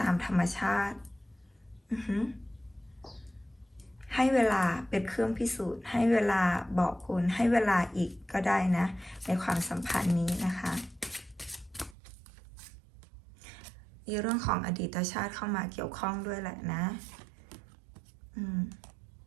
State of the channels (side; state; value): left; drops out; at 12.0 s